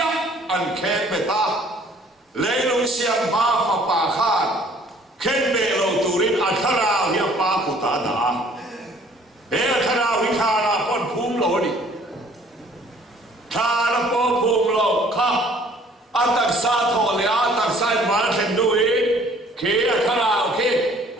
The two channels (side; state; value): both; normal; correlation 0.57